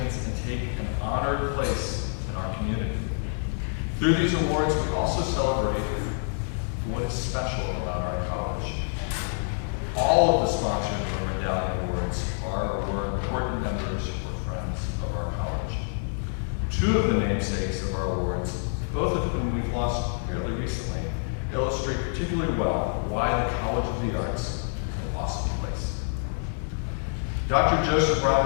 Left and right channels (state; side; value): silent; right; digital silence